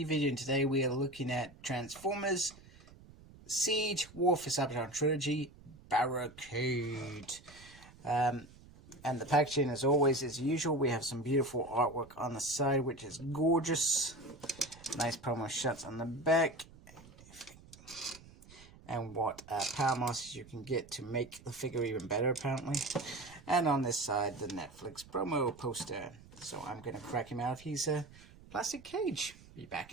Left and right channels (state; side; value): noise; right; rumble, 21 dB below the sound